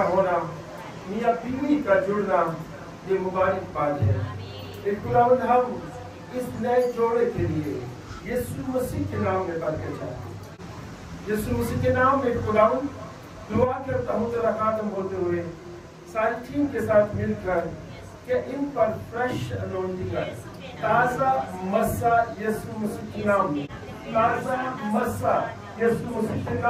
ہونا میاں بیوی کا جڑنا یہ مبارک بات ہے خداوند ہم اس نئے جوڑے کے لیے یسوع مسیح کے نام میں برکت چاہتے ہیں یسوع مسیح کے نام میں خداوند دعا کرتا ہوں تیرا خاتم ہوتے ہوئے ساری ٹیم کے ساتھ مل کر کہ ان پر فریش انونٹنگ ہے تازہ مسا یسوع مسیح کے نام میں تازہ مسا یسوع مسیح کے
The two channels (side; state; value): both; identical; correlation 1.00